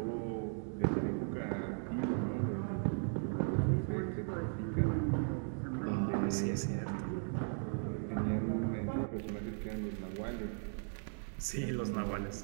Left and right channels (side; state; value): left; silent; 53 dB below the other